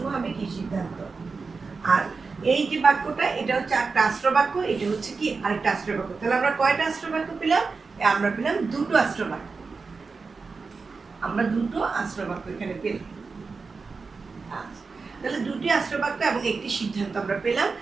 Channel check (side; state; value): left; quieter; 4.5 dB